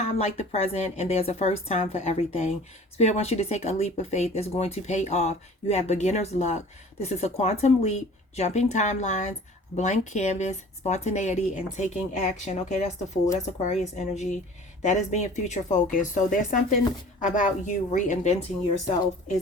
like the present, and there's a first time for everything. Spirit wants you to take a leap of faith that's going to pay off. You have beginner's luck. This is a quantum leap, jumping timelines, blank canvas, spontaneity, and taking action. Okay, that's the Fool. That's Aquarius energy. That is being future focused. So there's something about you reinventing yourself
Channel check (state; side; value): normal; both; correlation 0.46